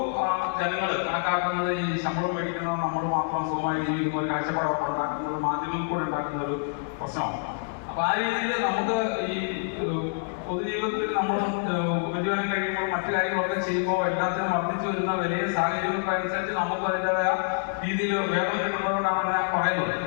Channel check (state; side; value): silent; right; digital silence